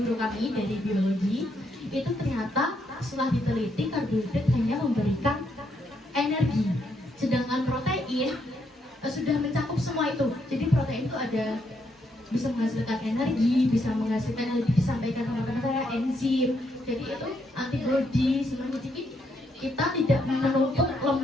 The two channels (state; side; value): normal; both; correlation 0.76